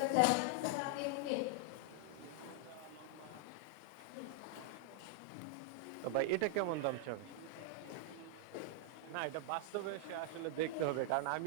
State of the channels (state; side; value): different; both; correlation 0.00